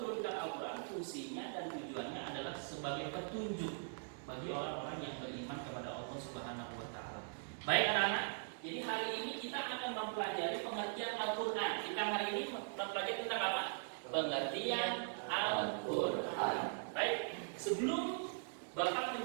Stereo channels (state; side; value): silent; left; digital silence